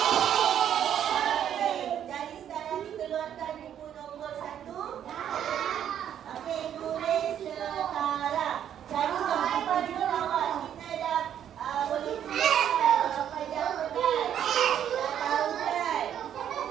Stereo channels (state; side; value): quieter; left; 9.8 dB